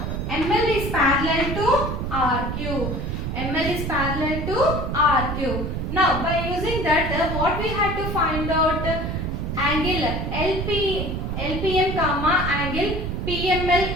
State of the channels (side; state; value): right; noise; rumble, 3 dB below the sound